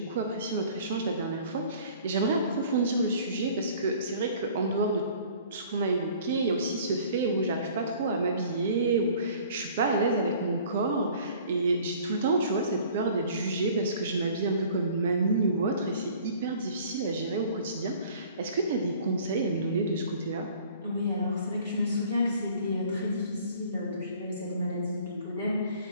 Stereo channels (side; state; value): both; inverted; correlation -0.51